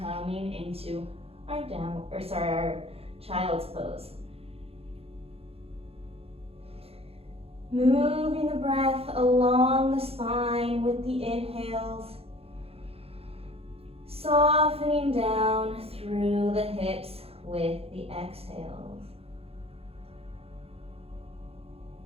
into our our child's pose. Moving the breath along the spine with the inhales. Softening down through the hips with the exhales.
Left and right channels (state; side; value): late; left; 0.29 ms